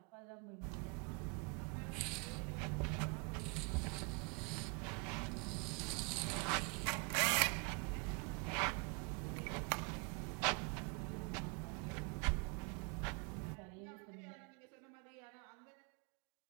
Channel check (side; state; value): left; quieter; 34.1 dB